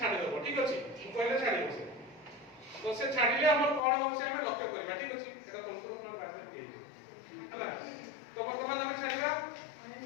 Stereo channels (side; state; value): right; drops out; at 3.8 s